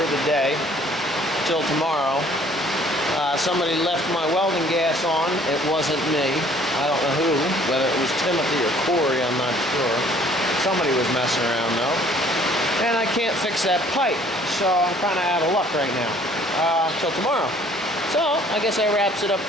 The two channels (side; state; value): both; normal; correlation 0.57